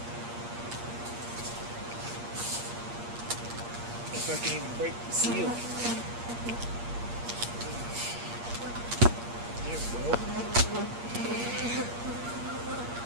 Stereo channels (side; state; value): left; late; 8.5 ms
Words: If I can even break the seal. There we